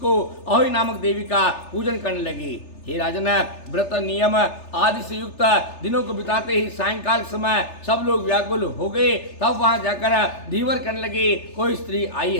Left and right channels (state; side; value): late; right; 3.3 ms